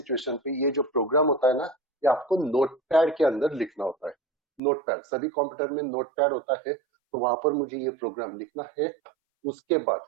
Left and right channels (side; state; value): left; drops out; at 4.6 s